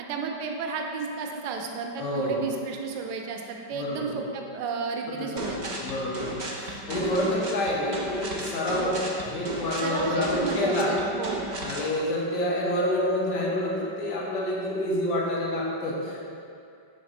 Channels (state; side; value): late; left; 5.1 ms